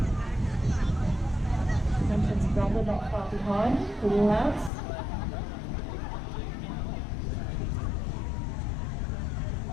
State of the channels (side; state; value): right; drops out; at 4.7 s